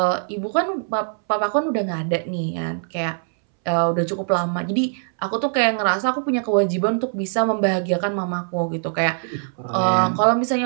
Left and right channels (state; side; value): silent; left; 64 dB below the other